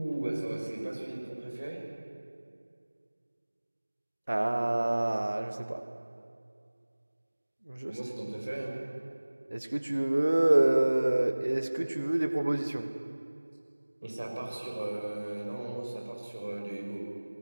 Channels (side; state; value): both; inverted; correlation -1.00